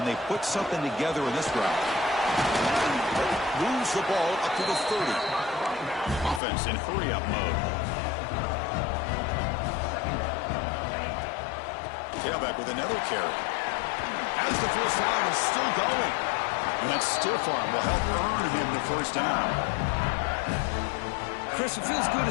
they put something together in this route? Moves the ball up to the 30. Offense in hurry-up mode. Tailback with another carry. As the first down is still going. And that stiff arm will help earn him the 1st down. Chris, it feels good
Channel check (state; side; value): drops out; right; at 6.4 s